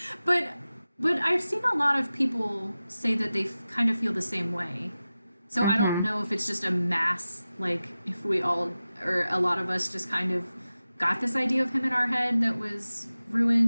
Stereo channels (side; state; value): both; inverted; correlation -0.95